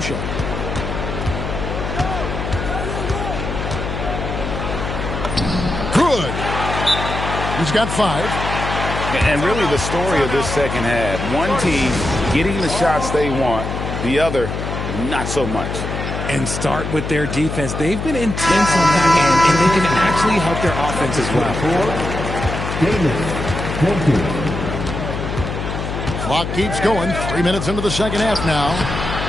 Good. He's got 5. And really the story of this second half. One team getting the shots they want, the other not so much. And start with their defense. They've been intense on that end, and they can actually help their offense as well. Clock keeps going. 3 minutes into the second half now.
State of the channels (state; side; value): noise; left; hum, 4 dB below the sound